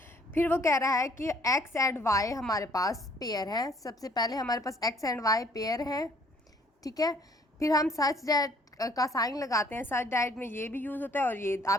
फिर वो कह रहा है कि एक्स एंड वाई हमारे पास पेयर हैं। सबसे पहले हमारे पास एक्स एंड वाई पेयर हैं, ठीक है। फिर हम सच दैट का साइन लगाते हैं। सच दैट में ये भी यूज़ होता है और ये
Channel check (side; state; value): both; normal; correlation 0.60